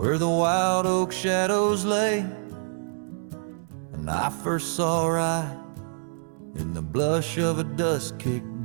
the wild oak shadows lay. And I first saw right in the blush of a dusk-kicked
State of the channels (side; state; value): left; silent; digital silence